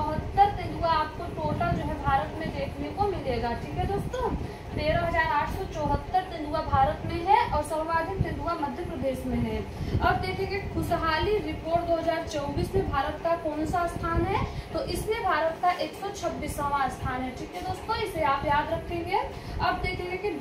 तेंदुआ आपको टोटल जो है भारत में देखने को मिलेगा। ठीक है दोस्तों, 13,874 तेंदुआ भारत में है और सर्वाधिक तेंदुआ मध्य प्रदेश में है। अब देखेंगे खुशहाली रिपोर्ट 2024 में भारत का कौन सा स्थान है? तो इसमें भारत का 126वां स्थान है। ठीक है दोस्तों, इसे आप याद रखेंगे। अब देखेंगे कि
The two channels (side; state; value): both; identical; correlation 1.00